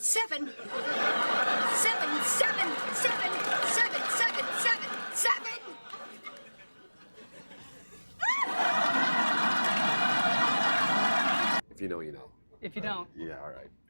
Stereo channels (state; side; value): inverted; both; correlation -1.00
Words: Seven. If you know, you know. If you don't, Yeah, all right.